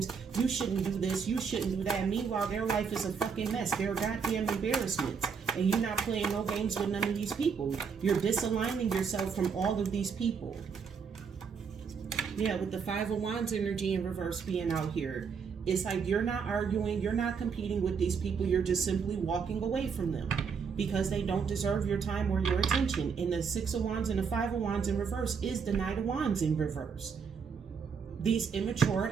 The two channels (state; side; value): quieter; left; 6.1 dB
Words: you shouldn't do this, you shouldn't do that. Meanwhile, their life is a fucking mess. They're goddamn embarrassments. And you're not playing no games with none of these people. You're disaligning yourself from all of these people. Yeah, with the Five of Wands energy in reverse being out here, it's like you're not arguing, you're not competing with these people, you're just simply walking away from them. Because they don't deserve your time or your attention. And the Six of Wands and the Five of Wands in reverse is the Knight of Wands in reverse. These immature